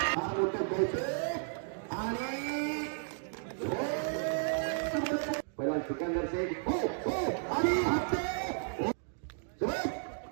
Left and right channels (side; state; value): left; silent; digital silence